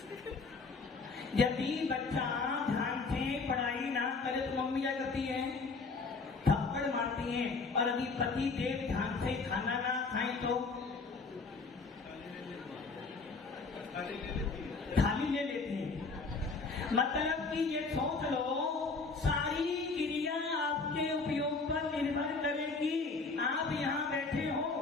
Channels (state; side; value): quieter; right; 4.2 dB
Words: यदि बच्चा ध्यान से पढ़ाई ना करे तो मम्मी क्या करती है? थप्पड़ मारती है। और यदि पति देव ध्यान से खाना ना खाए तो थाली ले लेती है। मतलब कि ये सोच लो, सारी क्रिया आपके उपयोग पर निर्भर करेगी। आप यहाँ बैठे हो